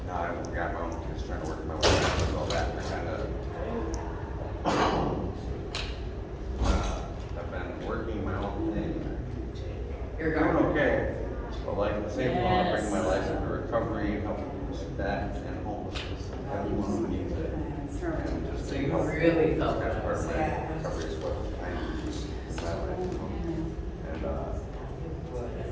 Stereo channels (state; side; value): identical; both; correlation 1.00